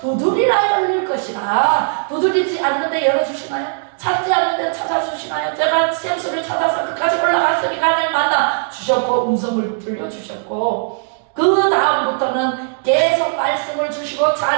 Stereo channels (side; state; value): left; silent; digital silence